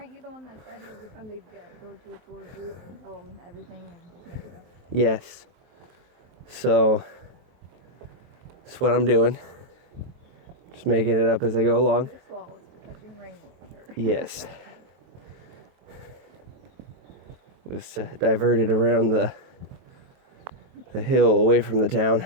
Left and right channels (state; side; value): late; left; 23 ms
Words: you the one that said every time they'd go to a tour group and tell them everything and just make it up? Yes. So that's what I'm doing. Just making it up as I go along. This wall is for catching rainwater. Yes. It was diverted around the hill away from the town.